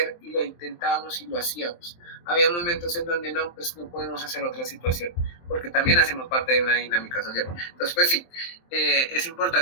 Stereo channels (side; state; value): right; late; 23 ms